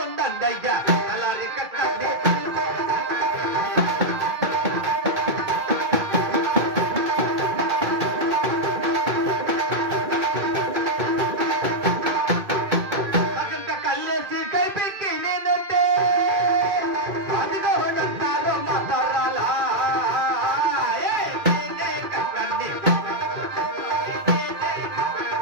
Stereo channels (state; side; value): late; left; 2.4 ms